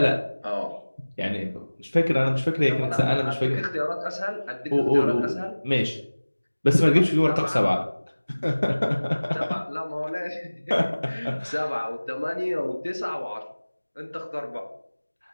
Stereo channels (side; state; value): both; inverted; correlation -1.00